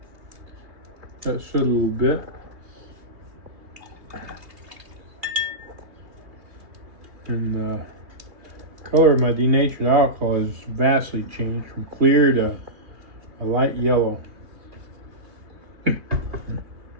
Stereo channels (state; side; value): late; left; 2.6 ms